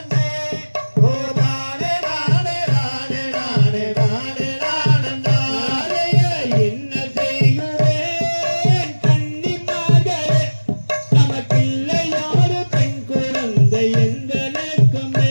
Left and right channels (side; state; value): both; inverted; correlation -1.00